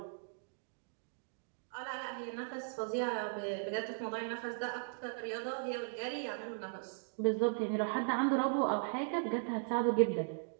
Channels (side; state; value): left; silent; digital silence